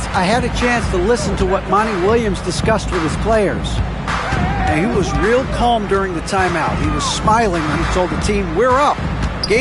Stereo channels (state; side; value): identical; both; correlation 1.00